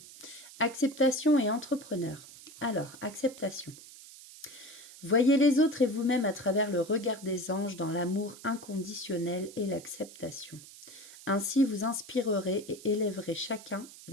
Acceptation et entrepreneur. Alors, acceptation. Voyez les autres et vous-même à travers le regard des anges dans l'amour inconditionnel et l'acceptation. Ainsi, vous inspirerez et élèverez chacun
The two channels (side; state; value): right; noise; hiss, 18 dB below the sound